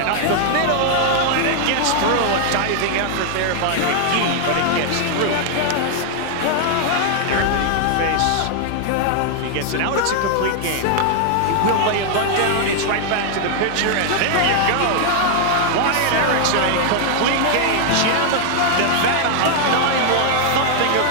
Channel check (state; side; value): different; both; correlation 0.00